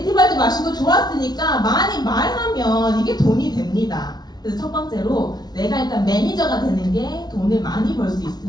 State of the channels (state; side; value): late; right; 0.19 ms